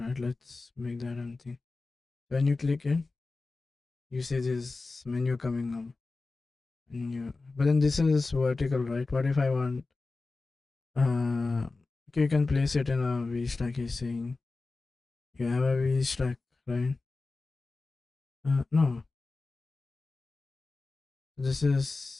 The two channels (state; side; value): quieter; right; 3.6 dB